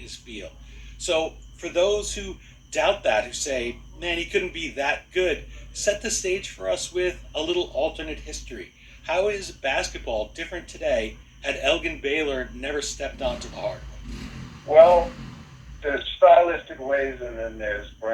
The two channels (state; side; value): identical; both; correlation 1.00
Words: field. So for those who doubt that, who say, man, he couldn't be that good, set the stage for us with a little alternate history. How is basketball different today had Elgin Baylor never stepped onto the hardwood? Well, there's stylistic ways and then there's